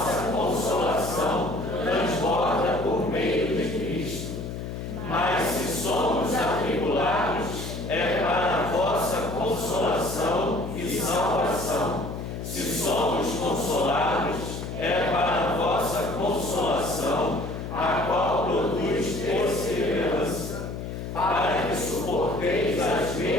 consolação transborda por meio de Cristo. Mas se somos atribulados, é para a vossa consolação e salvação. Se somos consolados, é para a vossa consolação, a qual produz perseverança, para que suporteis as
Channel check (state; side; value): noise; left; hum, 7 dB below the sound